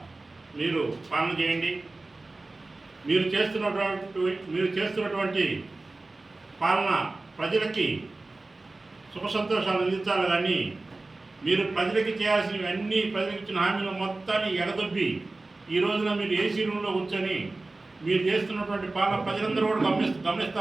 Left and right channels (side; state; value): left; quieter; 3.2 dB